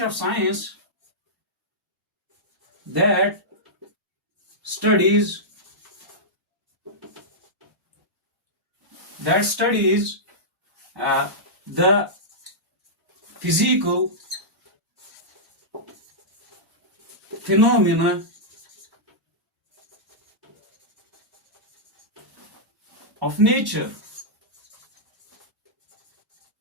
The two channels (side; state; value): both; normal; correlation -0.12